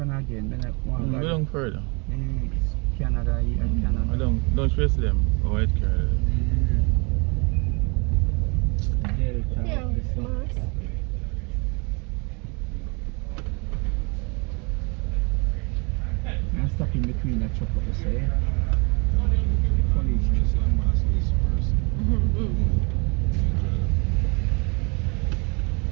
again? Then I want We don't further. Canada, Canada. I don't stress them. White car. Delta, Yeah, this one. Mars. I'm stuck in between that truck up there. Police.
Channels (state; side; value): quieter; left; 31.1 dB